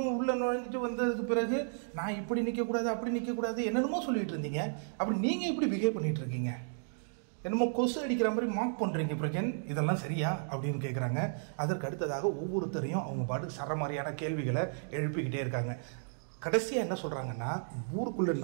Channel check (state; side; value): silent; left; digital silence